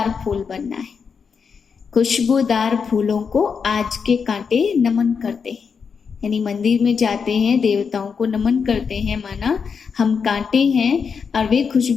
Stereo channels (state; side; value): quieter; right; 6.0 dB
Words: फूल बनना है। खुशबूदार फूलों को आज के कांटे नमन करते हैं, यानी मंदिर में जाते हैं, देवताओं को नमन करते हैं, माना हम कांटे हैं और वे